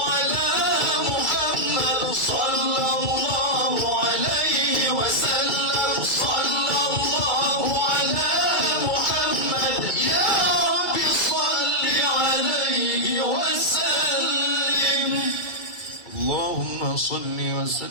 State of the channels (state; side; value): late; right; 2.3 ms